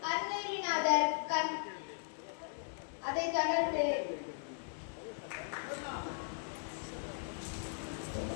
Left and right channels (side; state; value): right; silent; digital silence